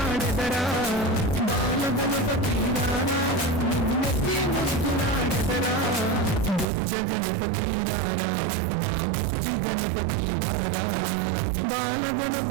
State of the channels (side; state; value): left; drops out; at 6.7 s